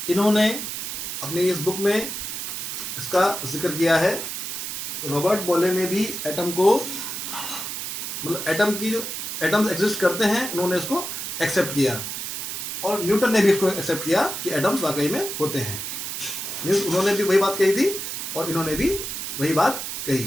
इन्होंने अपनी इस बुक में इसका जिक्र किया है. रॉबर्ट बॉयले ने भी एटम को, मतलब एटम की जो एटम्स एग्जिस्ट करते हैं, उन्होंने इसको एक्सेप्ट किया. और न्यूटन ने भी इसको एक्सेप्ट किया कि एटम्स वाकई में होते हैं. उन्होंने भी वही बात कही थी और इन्होंने भी वही बात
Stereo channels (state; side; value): noise; right; hiss, 5 dB below the sound